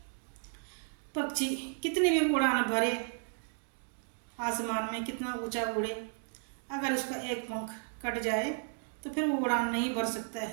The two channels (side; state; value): left; silent; 55 dB below the other